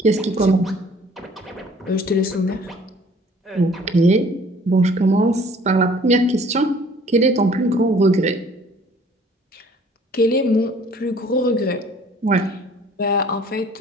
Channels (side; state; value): both; normal; correlation 0.54